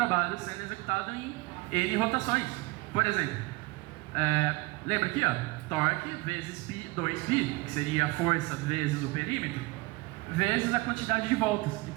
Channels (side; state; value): left; quieter; 22.9 dB